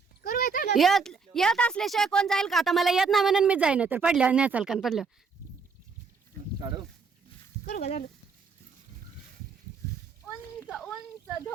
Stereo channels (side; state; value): left; quieter; 5.0 dB